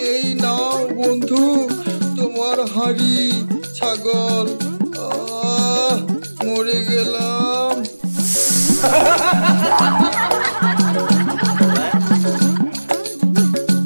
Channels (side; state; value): both; inverted; correlation -1.00